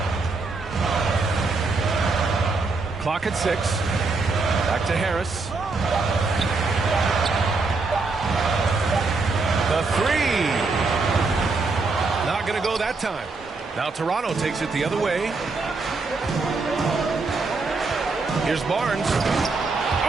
Clock at 6. Back to Harris. The 3. Not going to go that time. Now Toronto takes it the other way. Here's Barnes.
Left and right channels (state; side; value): quieter; left; 3.9 dB